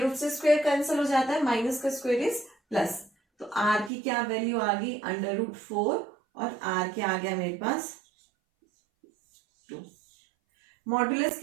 रूट से स्क्वायर कैंसिल हो जाता है, माइनस का स्क्वायर इज प्लस। तो r की क्या वैल्यू आ गई? √4 और r क्या आ गया मेरे पास? 2। मॉडुलस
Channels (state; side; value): drops out; left; at 3.9 s